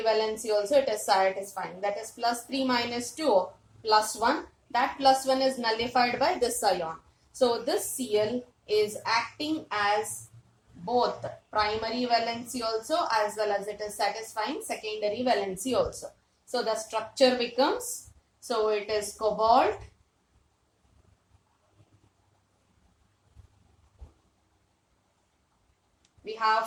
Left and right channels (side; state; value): both; identical; correlation 1.00